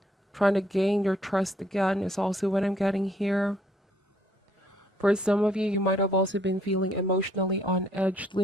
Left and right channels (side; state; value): both; normal; correlation 0.66